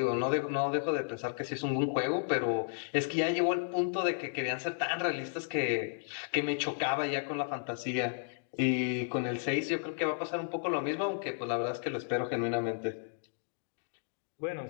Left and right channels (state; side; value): silent; right; digital silence